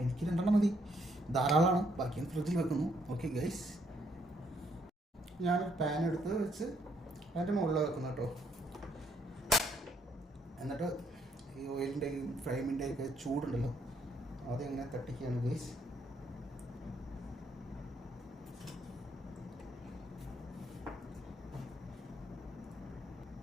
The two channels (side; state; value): both; normal; correlation 0.71